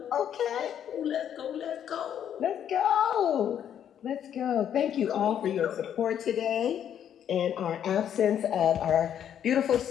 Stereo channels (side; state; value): right; quieter; 9.5 dB